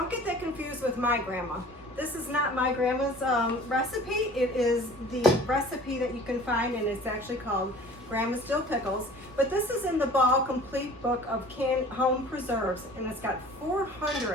get that confused with my grandma. This is not my grandma's recipe. It is the recipe that you can find, and it's actually called Grandma's Dill Pickles. But this is in the Ball Complete Book of Home Preserves, and it's got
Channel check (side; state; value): both; normal; correlation 0.45